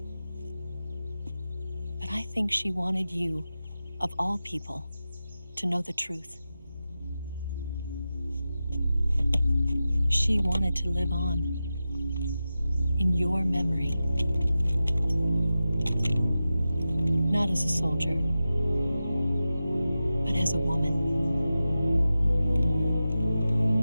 But I think she wanted you, of all people, to know the truth. She wanted to live on in your memory. Not as a soldier, but as a woman.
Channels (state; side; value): inverted; both; correlation -0.93